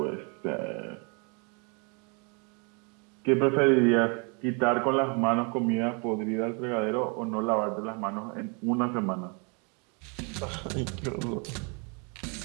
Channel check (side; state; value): left; quieter; 34.5 dB